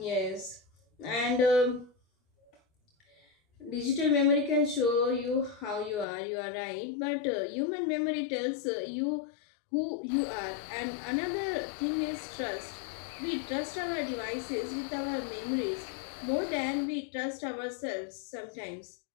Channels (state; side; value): drops out; right; at 6.1 s